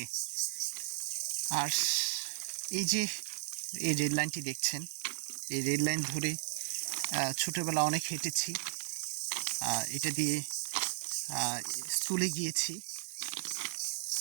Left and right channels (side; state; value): left; silent; digital silence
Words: আর এই যে এই রেল লাইনটি দেখছেন, এই রেল লাইন ধরে ছোটোবেলা অনেক হেঁটেছি, এটা দিয়ে স্কুলে গিয়েছি,